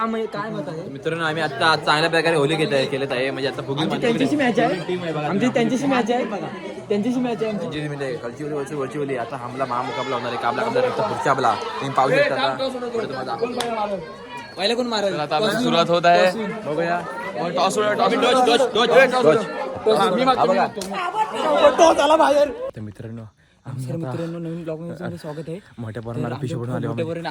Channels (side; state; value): both; identical; correlation 1.00